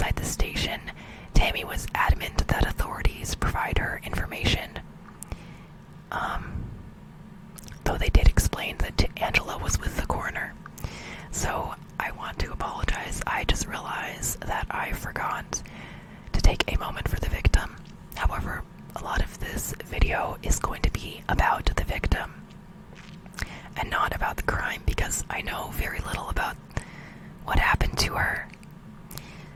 the station, Tammy was adamant that authorities provide her information. Though they did explain that Angela was with the coroner. So, I want to apologize. I just realized that I forgot to take a moment for the victim. However, a lot of this video is going to be about the victim and not about the crime, because I know very little about what happened to her.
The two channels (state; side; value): identical; both; correlation 1.00